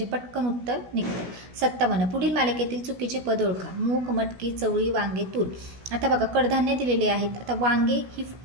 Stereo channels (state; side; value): late; left; 16 ms